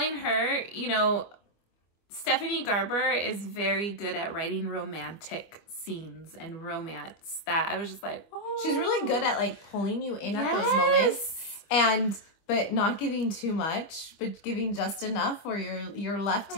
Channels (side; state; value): right; late; 25 ms